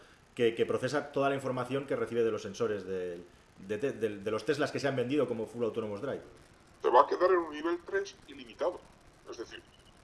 que procesa toda la información que recibe de los sensores de los Teslas que se han vendido como Full Autonomous Drive. Se va a quedar en un nivel 3 ilimitado. Es decir,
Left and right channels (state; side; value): identical; both; correlation 1.00